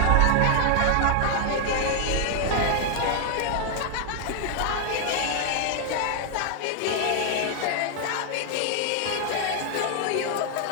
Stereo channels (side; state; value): both; different; correlation 0.00